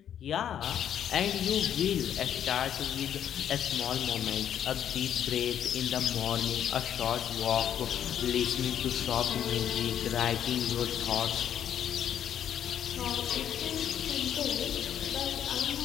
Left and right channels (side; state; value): right; quieter; 9.7 dB